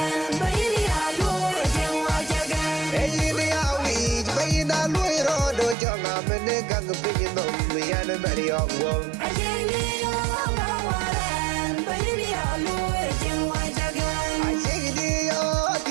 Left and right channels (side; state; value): left; drops out; at 5.8 s